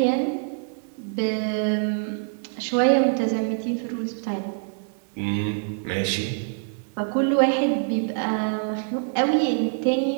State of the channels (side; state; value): left; silent; 60 dB below the other